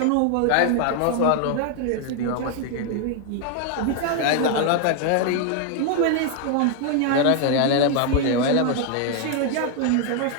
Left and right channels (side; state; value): both; different; correlation 0.00